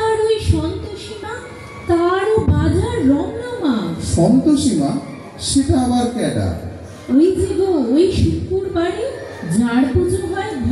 ওই সন্তোষীমা, তারও বাজার রমরমা। সন্তোষীমা? সেটা আবার কেডা? ওই যে গো, ওই শুক্রবারে ঝাড় পুজো হয়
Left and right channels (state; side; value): identical; both; correlation 1.00